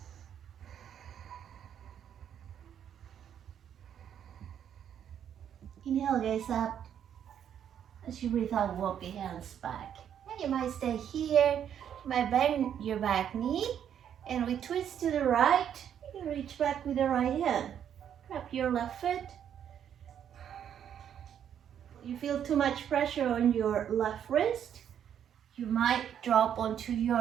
Inhale, gaze up. As you breathe out, walk the hands back. And you might stay here. You might bend your back knee, and we twist to the right. You reach back with the right hand. Grab your left foot. You feel too much pressure on your left wrist, you might drop onto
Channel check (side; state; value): left; quieter; 9.2 dB